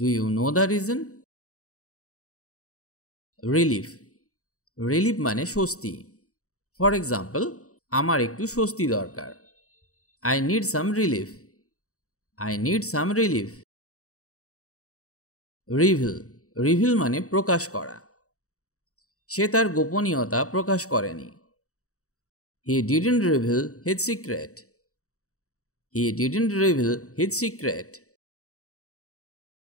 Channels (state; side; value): late; right; 0.64 ms